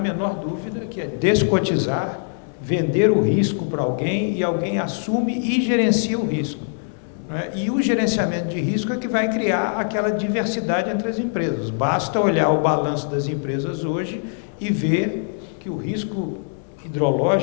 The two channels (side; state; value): right; silent; digital silence